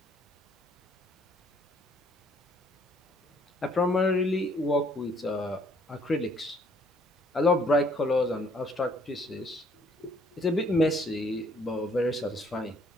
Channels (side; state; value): both; normal; correlation 0.63